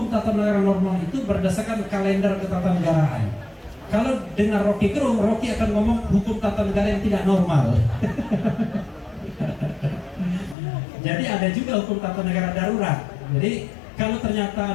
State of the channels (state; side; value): drops out; right; at 10.6 s